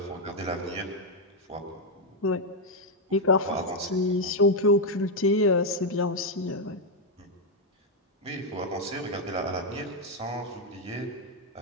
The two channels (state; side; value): normal; both; correlation 0.01